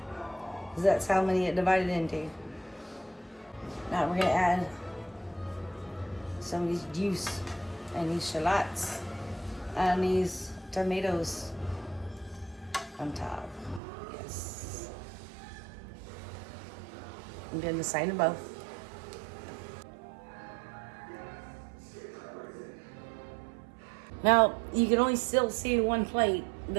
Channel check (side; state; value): left; drops out; at 13.8 s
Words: Because that's how many it divided into. Now we're going to add some of these juice and these shallots and these tomatoes on top. Yes. I'm doing the same to both. Now, you can only still see in one plate